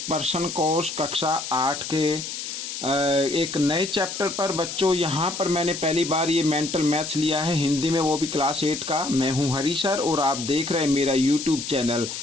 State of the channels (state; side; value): noise; left; hiss, 7 dB below the sound